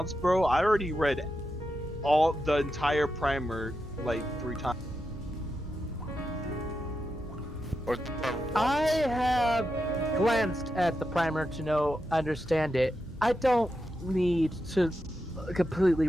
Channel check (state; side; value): normal; both; correlation 0.87